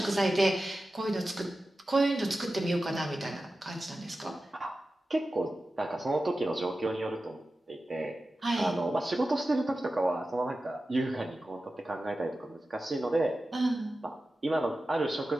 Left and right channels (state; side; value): normal; both; correlation 0.94